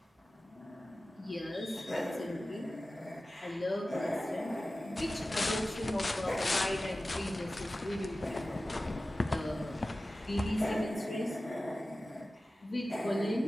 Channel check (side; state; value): both; normal; correlation 0.96